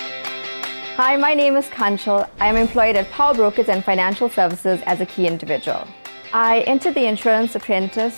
Hi, my name is Kanshal. I am employed at Power Brokers and Financial Services as a key individual. I entered the Insurance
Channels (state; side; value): inverted; both; correlation -1.00